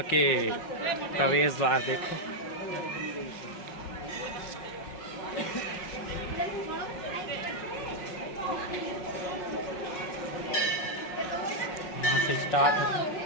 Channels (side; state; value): right; late; 5.5 ms